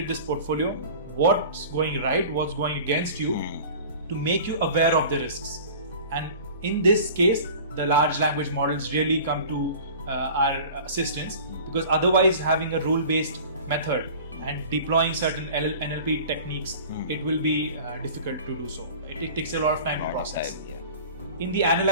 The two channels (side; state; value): both; inverted; correlation -0.41